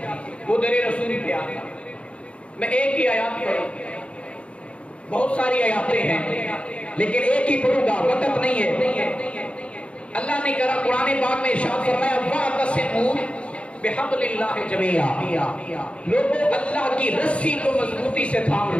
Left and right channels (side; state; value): right; late; 0.060 ms